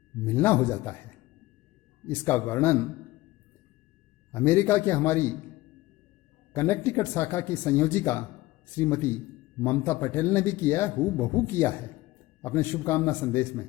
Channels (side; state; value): right; quieter; 18.5 dB